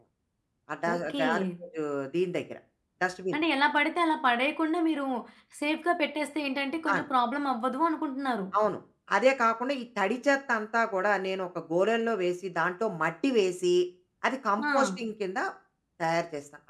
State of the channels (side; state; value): both; identical; correlation 1.00